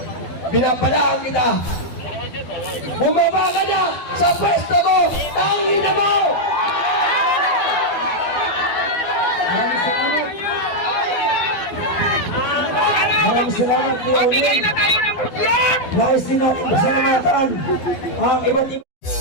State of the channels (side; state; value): right; late; 12 ms